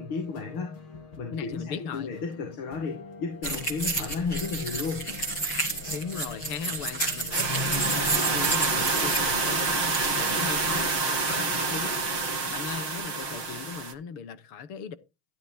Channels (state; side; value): late; right; 6.4 ms